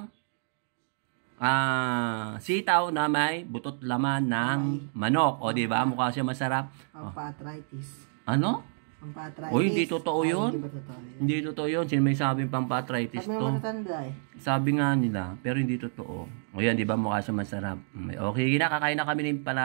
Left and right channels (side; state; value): left; silent; digital silence